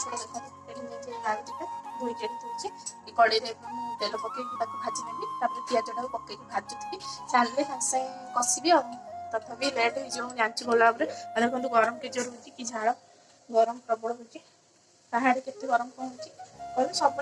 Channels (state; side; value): identical; both; correlation 1.00